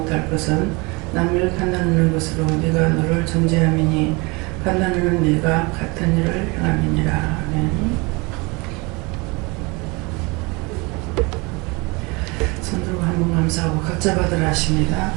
것은 남을 판단하는 것으로 네가 너를 정죄함이니 판단하는 네가 같은 일을 행함이니라. 아멘. 손들고 한번 감사하고 각자 받으라 하십니다.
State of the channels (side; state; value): left; quieter; 26.9 dB